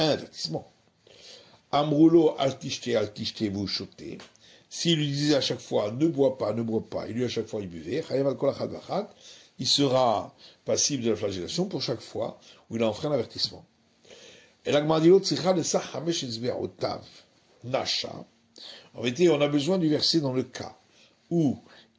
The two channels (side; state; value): both; identical; correlation 1.00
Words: avertissement. Amroulo altishte, vous chotez. S'il lui disait à chaque fois, ne bois pas, et lui à chaque fois il buvait, il sera passible de la flagellation pour chaque fois où il a enfreint l'avertissement. Et la Gemara dit l'autre, Nasha. En vérité, on a besoin du verset dans le cas où